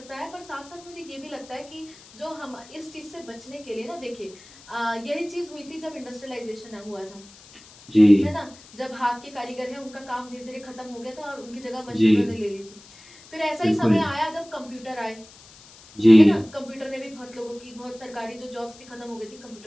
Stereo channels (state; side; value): noise; left; hiss, 22 dB below the sound